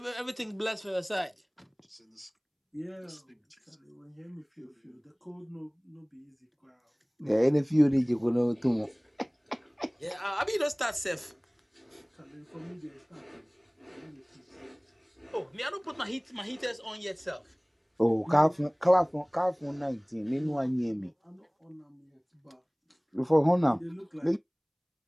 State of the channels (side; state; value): both; identical; correlation 1.00